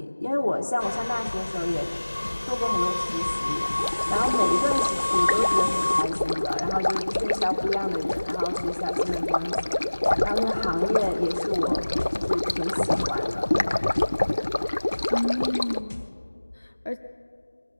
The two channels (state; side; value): inverted; both; correlation -1.00